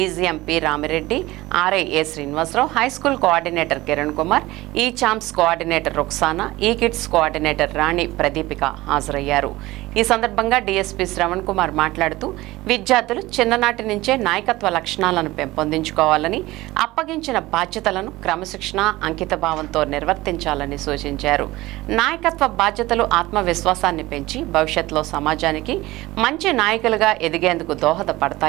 P Ramireddy, RI A Srinivasarao, high school coordinator Kiran Kumar, ఈ చాంప్స్ కోఆర్డినేటర్ రుక్సానా, ఈ కిడ్స్ కోఆర్డినేటర్ రాణి ప్రదీపిక హాజరయ్యారు. ఈ సందర్భంగా డీఎస్పీ శ్రవణ్ కుమార్ మాట్లాడుతూ విద్యార్థులు చిన్ననాటి నుంచే నాయకత్వ లక్షణాలను పెంపొందించుకోవాలని, అప్పగించిన బాధ్యతలను క్రమశిక్షణ, అంకితభావంతో నిర్వర్తించాలని సూచించారు. నాయకత్వ బాధ్యతలు ఆత్మవిశ్వాసాన్ని పెంచి భవిష్యత్తులో సమాజానికి మంచి నాయకులుగా ఎదిగేందుకు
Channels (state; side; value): quieter; left; 18.8 dB